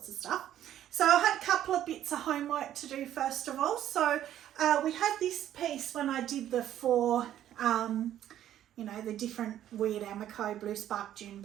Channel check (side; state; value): left; quieter; 11.6 dB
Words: of stuff. So I had a couple of bits of homework to do first of all. So we had this piece when I did the four, the different weird Amaco, blue spark, June